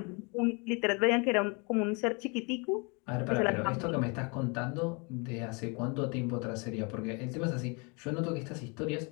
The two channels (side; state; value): right; quieter; 31.9 dB